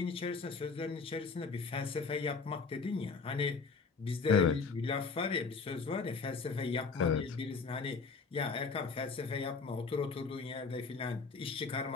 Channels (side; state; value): right; quieter; 4.8 dB